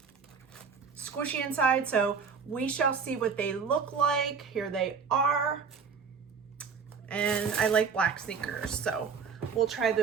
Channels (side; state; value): left; quieter; 5.9 dB